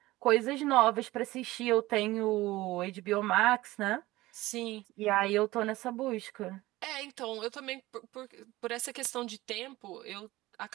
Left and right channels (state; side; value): quieter; left; 18.4 dB